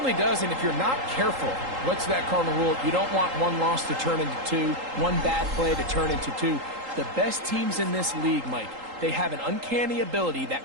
does, and if you're not careful, what's that cardinal rule? You don't want one loss to turn into 2, one bad play to turn into 2. The best teams in this league, Mike, they have an uncanny ability that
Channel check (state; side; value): late; left; 3.8 ms